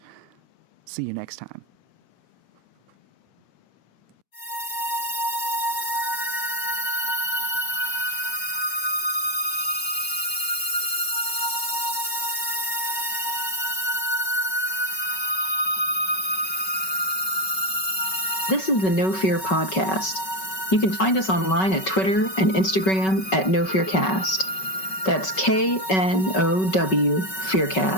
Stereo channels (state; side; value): late; right; 5.3 ms